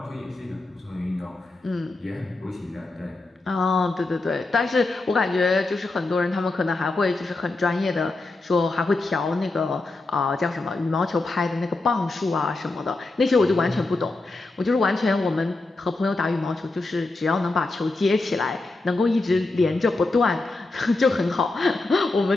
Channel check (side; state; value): right; quieter; 3.2 dB